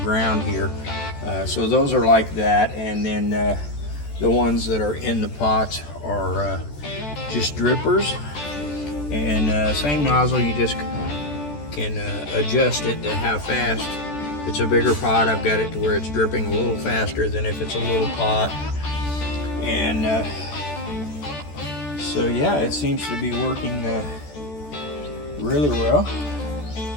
here. So those are like that, and then the ones that are in the pots are just drippers. And same nozzle, you just can adjust it to how fast. If it's a bigger pot, I've got it to where it's dripping a little faster than if it's a little pot. And so yeah, it seems to be working really well.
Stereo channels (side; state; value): right; late; 14 ms